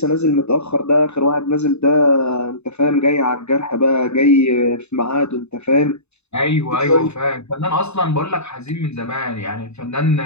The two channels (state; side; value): late; right; 0.81 ms